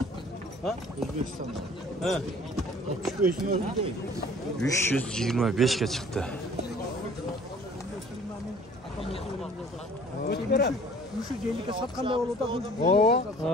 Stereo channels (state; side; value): normal; both; correlation 0.52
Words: Ha? Özbekistan. He. 65 ne oldu değil? 325 ga chiqdi. Şu jelike satqanday bo'ldi.